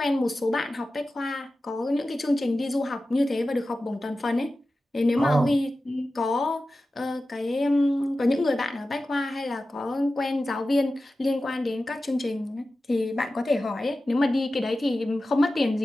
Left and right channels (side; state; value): both; normal; correlation 0.94